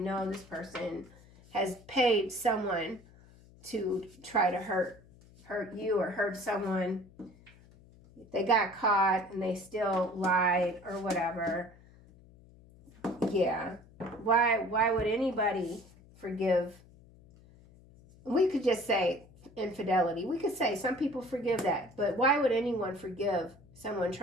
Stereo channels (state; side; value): noise; left; hum, 24 dB below the sound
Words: this person has paid someone to try to hurt you or hurt someone. They got caught and they still lied or whatever. Yeah. Why would anybody forgive? We could just say infidelity. We could say some people forgive that, but why would anyone forgive someone